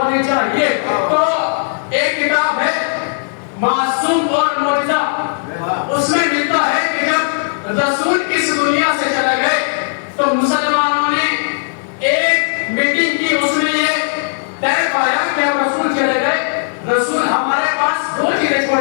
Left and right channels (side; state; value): right; silent; digital silence